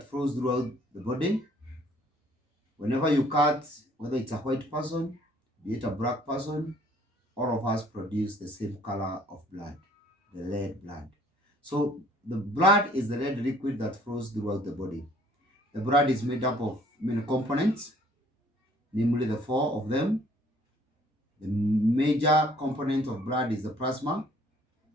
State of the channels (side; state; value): both; normal; correlation 0.59